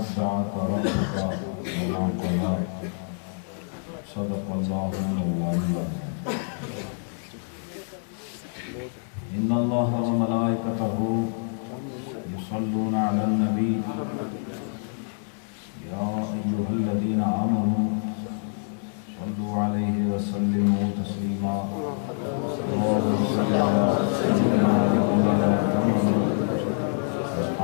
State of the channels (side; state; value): right; silent; 61 dB below the other